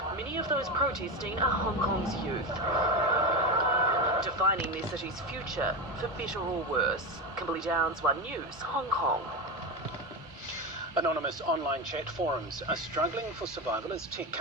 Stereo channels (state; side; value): normal; both; correlation 0.17